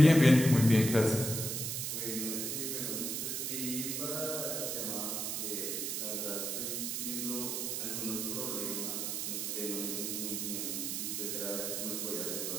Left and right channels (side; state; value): right; noise; hiss, 2 dB below the sound